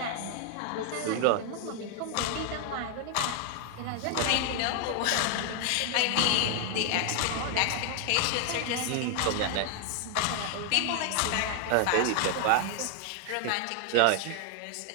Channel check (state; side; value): different; both; correlation 0.00